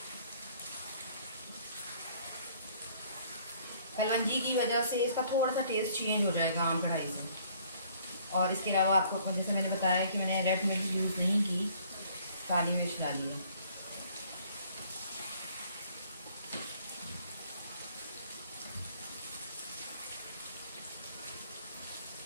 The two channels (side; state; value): both; inverted; correlation -0.59